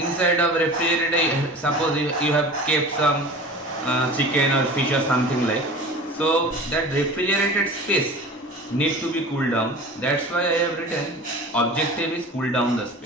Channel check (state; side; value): normal; both; correlation 0.37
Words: of refrigerator, suppose you have kept some chicken or fish or something like, so that refrigerated space need to be cooled down. That's why I have written objective is cool down the